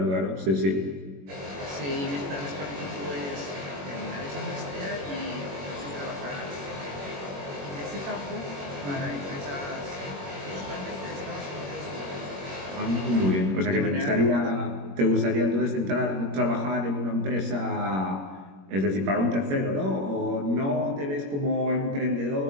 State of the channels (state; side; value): late; left; 21 ms